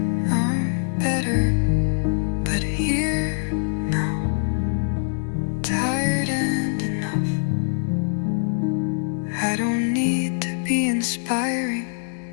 I'm better, but here now, tired and enough. I don't need to be inspiring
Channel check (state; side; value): silent; right; 63 dB below the other